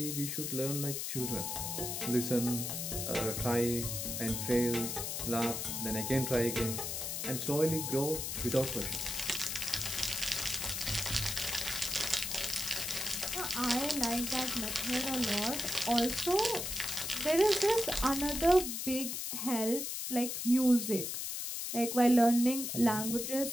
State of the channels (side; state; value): left; noise; hiss, 3 dB below the sound